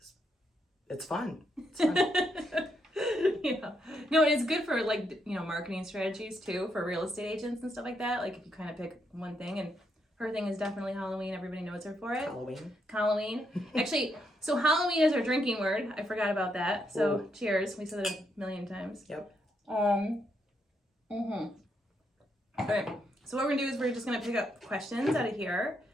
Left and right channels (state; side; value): normal; both; correlation 0.78